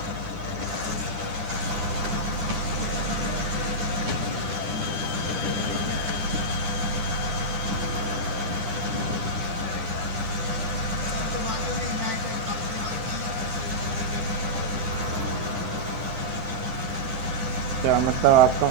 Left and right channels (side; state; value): left; late; 10 ms